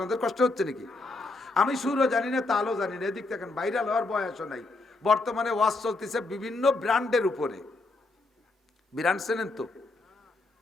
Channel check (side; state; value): right; quieter; 3.3 dB